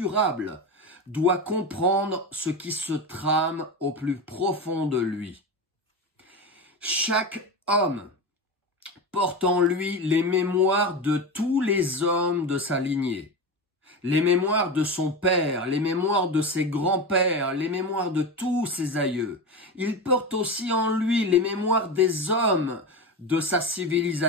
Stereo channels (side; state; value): both; normal; correlation 0.22